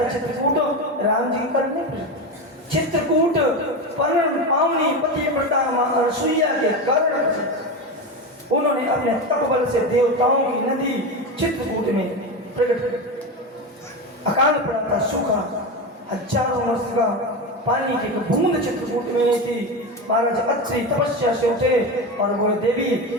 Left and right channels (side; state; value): both; normal; correlation 0.19